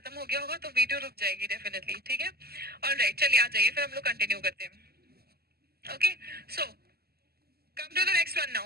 हो गया होगा तो वीडियो रुक जाएगी डेफिनेटली. ठीक है. ऑलराइट, चलिए आ जाइए, फिर हम लोग कंटिन्यू करते हैं. Okay, so come to the next one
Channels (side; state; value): left; late; 0.46 ms